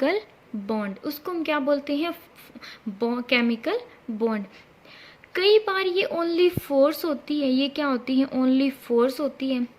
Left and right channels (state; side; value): identical; both; correlation 1.00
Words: bond. उसको हम क्या बोलते हैं? Chemical bond. कई बार ये ओनली फोर्स होती है. ये क्या होती है? ओनली फोर्स होती है.